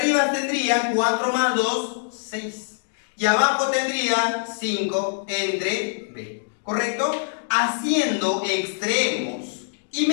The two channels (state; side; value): silent; right; digital silence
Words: tendría 4 más 2, 6. Y abajo tendría 5 entre B. ¿Correcto? Haciendo extremos y